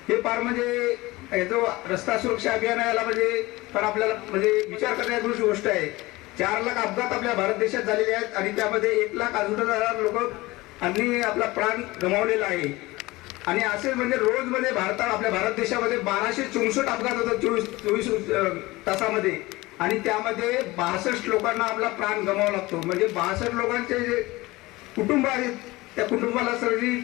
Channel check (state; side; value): quieter; right; 20.6 dB